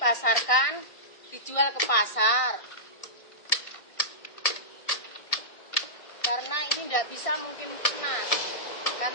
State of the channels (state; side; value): late; right; 1.8 ms